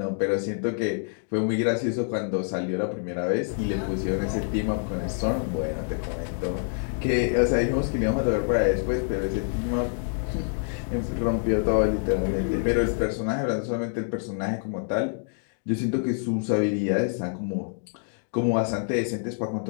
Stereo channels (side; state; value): right; silent; digital silence